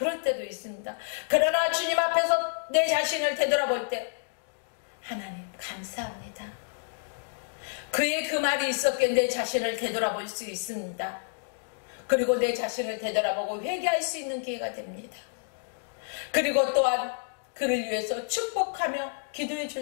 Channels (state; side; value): silent; right; digital silence